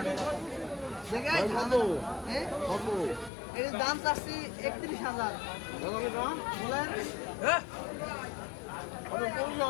এর দাম চাচ্ছি 31,000। বলেন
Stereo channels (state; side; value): drops out; right; at 3.3 s